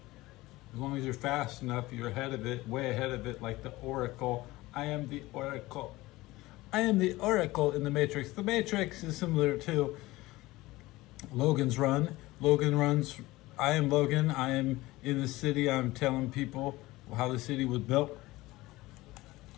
As long as you're fast enough, you're ahead of it, way ahead of it, like the Oracle. I am the Oracle. I am the Oracle in the Matrix. The Matrix is similar to Logan's Run. Logan runs, I am Logan. I am in the city. I'm telling people how the city was built.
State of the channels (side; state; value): right; quieter; 19.2 dB